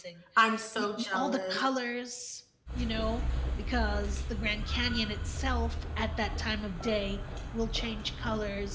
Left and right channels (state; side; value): identical; both; correlation 1.00